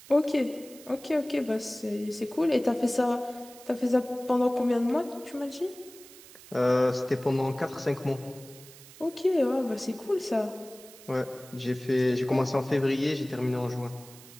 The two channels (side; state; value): right; noise; hiss, 20 dB below the sound